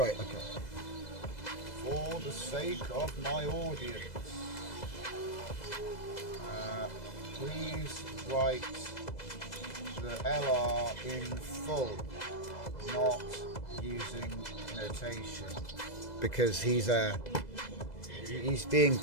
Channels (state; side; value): late; right; 2.0 ms